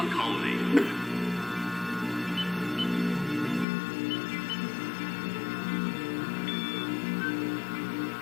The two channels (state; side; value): drops out; right; at 3.7 s